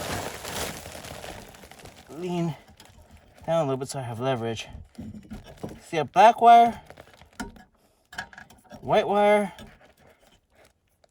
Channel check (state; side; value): identical; both; correlation 1.00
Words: Lean down a little bit so I have leverage. See a black wire, white wire,